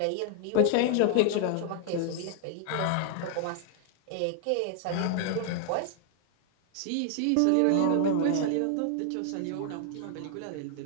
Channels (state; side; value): different; both; correlation 0.00